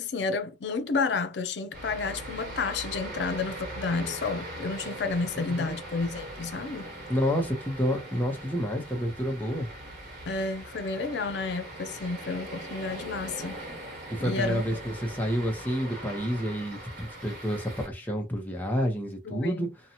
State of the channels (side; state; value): both; normal; correlation 0.54